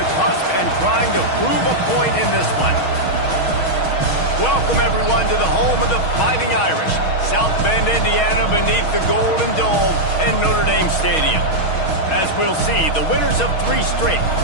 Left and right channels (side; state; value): right; late; 6.3 ms